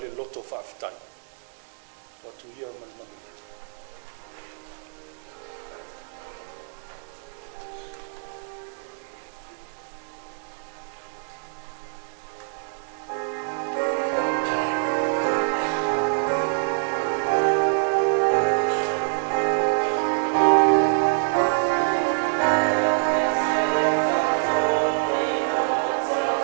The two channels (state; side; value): silent; left; digital silence